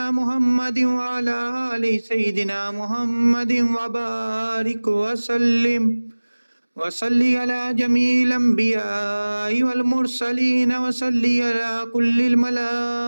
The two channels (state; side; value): inverted; both; correlation -1.00